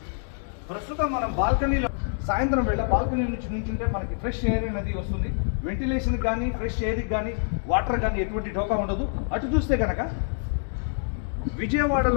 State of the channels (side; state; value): right; silent; digital silence